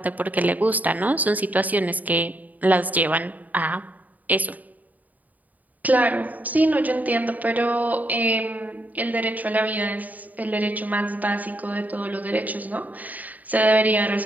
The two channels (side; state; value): left; late; 0.078 ms